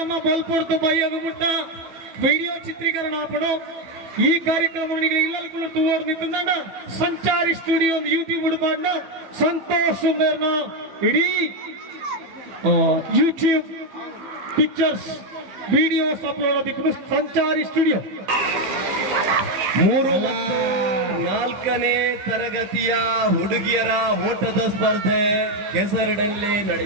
ಬಲ್ಪೊಡ್ತು ಬಯ್ಯಗುಮುಟ್ಟ ವಿಡಿಯೋ ಚಿತ್ರೀಕರಣ ಆಪಣು. ಈ ಕಾರ್ಯಕ್ರಮ ಇಲ್ಲೂ ತೂವರ್ ನಿಂತ ಸಂಚಾರಿ ಸ್ಟುಡಿಯೋ ಯೂಟ್ಯೂಬ್ ಹುಡುಪಾಡ್ನ ಸಂತೋಷ್ ಸುಂದರ್ನ ಇಡೀ ಯೂಟ್ಯೂಬ್ ಪಿಕ್ಚರ್ಸ್ ವಿಡಿಯೋಸ್ ಅಪ್ಲೋಡ್ ಆದಿಕ್ಕೂ ಸಂಚಾರಿ ಸ್ಟುಡಿಯೋ. 3 ಮತ್ತು 4ನೇ ತರಗತಿಯ ಹುಡುಗಿಯರ ಓಟದ ಸ್ಪರ್ಧೆ ಕೆಸರಡಲ್ಲಿ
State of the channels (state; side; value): late; left; 15 ms